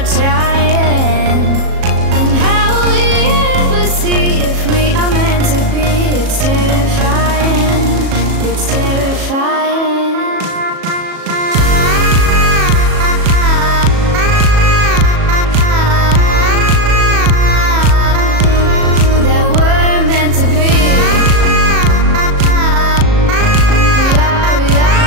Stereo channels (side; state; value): left; late; 37 ms